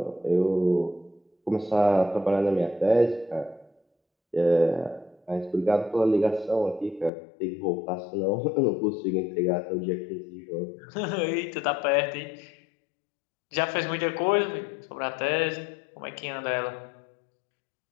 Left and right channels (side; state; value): right; drops out; at 7.1 s